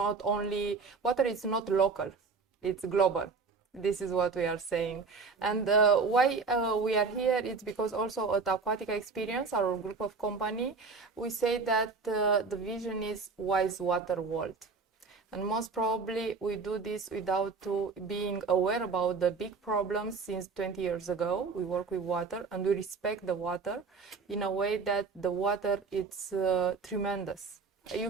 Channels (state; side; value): quieter; left; 4.7 dB